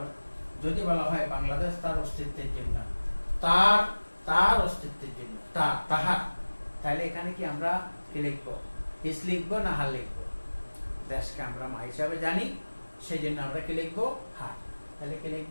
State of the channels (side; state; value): both; inverted; correlation -1.00